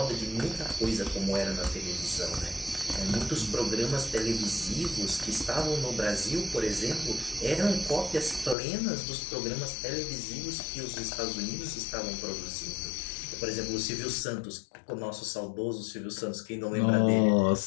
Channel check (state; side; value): drops out; right; at 8.6 s